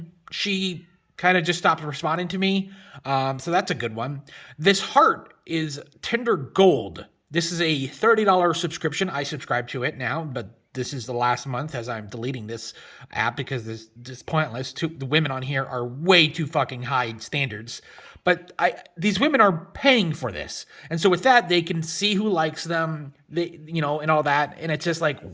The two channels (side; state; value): both; identical; correlation 1.00